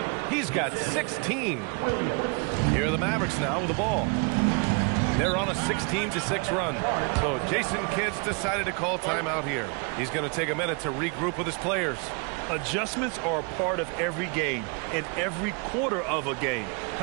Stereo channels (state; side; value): quieter; left; 33.6 dB